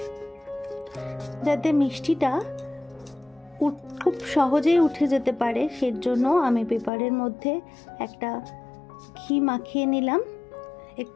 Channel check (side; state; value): right; drops out; at 6.9 s